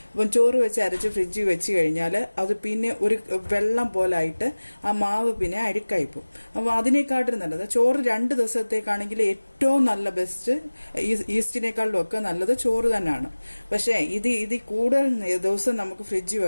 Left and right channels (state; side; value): inverted; both; correlation -1.00